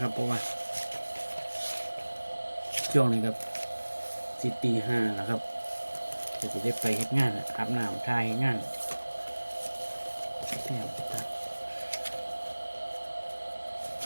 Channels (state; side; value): inverted; both; correlation -1.00